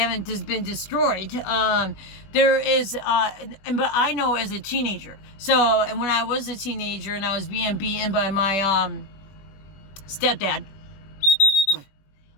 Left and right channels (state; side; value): late; right; 21 ms